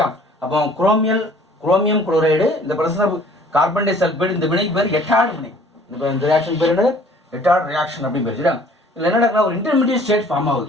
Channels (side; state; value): both; normal; correlation 0.54